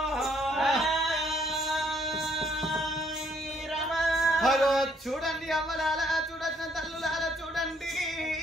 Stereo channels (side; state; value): both; normal; correlation 0.67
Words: చూడండి అవ్వలాల చూడసిన తల్లులాల చూడండి